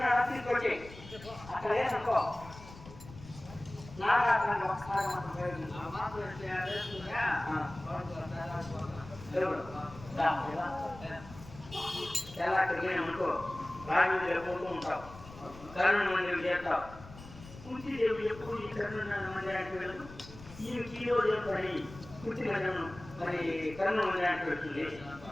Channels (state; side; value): noise; left; rumble, 17 dB below the sound